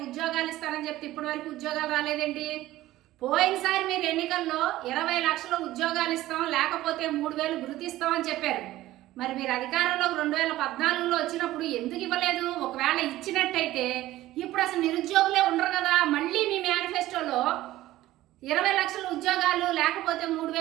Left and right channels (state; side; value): quieter; left; 15.7 dB